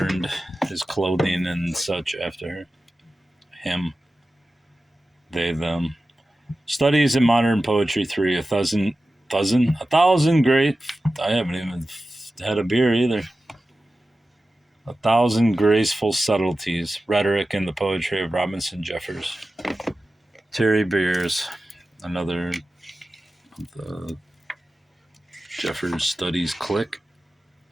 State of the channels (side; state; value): both; normal; correlation 0.94